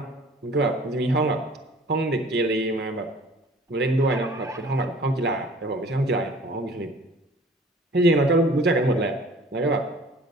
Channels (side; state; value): both; normal; correlation 0.50